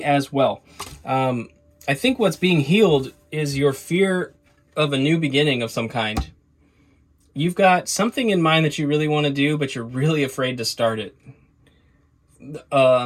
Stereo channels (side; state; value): both; identical; correlation 1.00